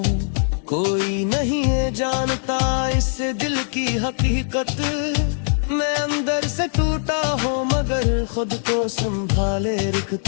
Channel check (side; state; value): right; silent; digital silence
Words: कोई नहीं है जानता इस दिल की हकीकत, मैं अंदर से टूटा हूँ मगर खुद को संभाले